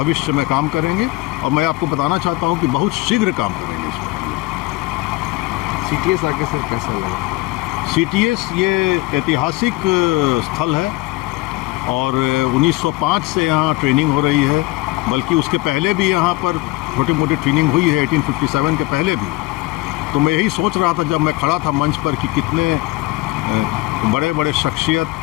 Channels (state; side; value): quieter; right; 20.9 dB